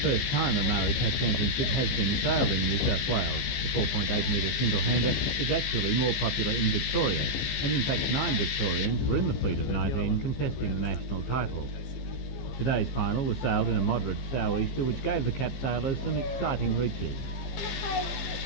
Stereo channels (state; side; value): late; right; 15 ms